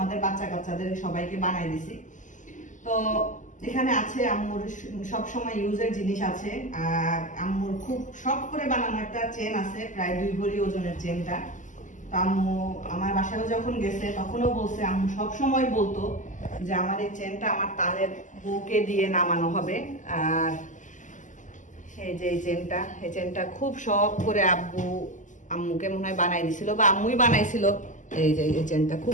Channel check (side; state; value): right; late; 0.37 ms